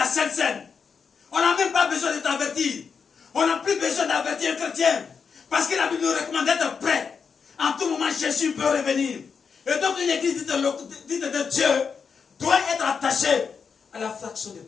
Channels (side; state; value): right; quieter; 5.9 dB